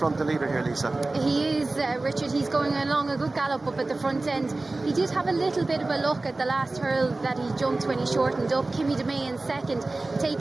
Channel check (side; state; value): left; quieter; 3.2 dB